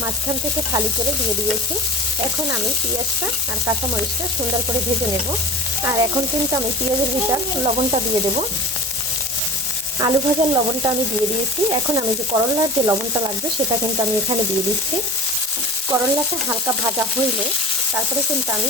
মাঝখান থেকে ফালি করে দিয়ে দিয়েছি। এখন আমি পেঁয়াজটা আর কাঁচামরিচটা সুন্দর করে ভেজে নেব। আর এখন কিন্তু আমি পেঁয়াজের ভিতর লবণটা দিয়ে দেব। আলু ভাজার লবণটা আমি দিয়ে দিয়েছি। এখন আমি যে করলার যে লবণটা লাগবে সেটা কিন্তু আমি এখানে দিয়ে দিচ্ছি। করলাটা হালকা ভাজা হইলে তারপরে কিন্তু আমি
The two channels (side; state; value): both; normal; correlation 0.37